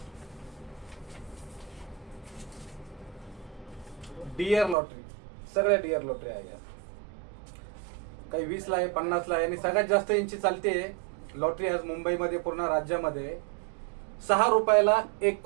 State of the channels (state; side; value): drops out; left; at 4.8 s